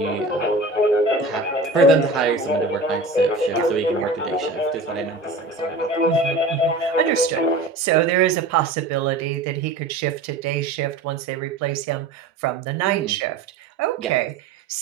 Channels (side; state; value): left; quieter; 3.2 dB